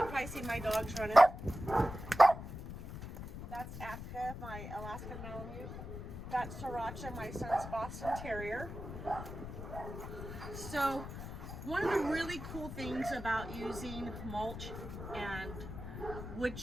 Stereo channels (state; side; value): noise; left; rumble, 9 dB below the sound